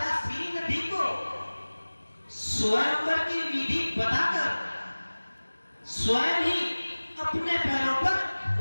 श्रीनिधि को स्वयंवर की विधि बताकर स्वयं ही अपने पैरों पर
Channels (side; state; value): both; inverted; correlation -1.00